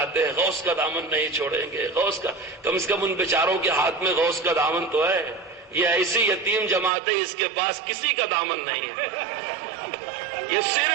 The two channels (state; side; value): drops out; left; at 6.9 s